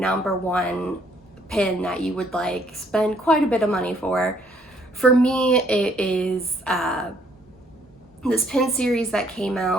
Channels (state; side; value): normal; both; correlation 0.66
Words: one pin that you would like spend quite a bit of money for. For me, it is this pin series that came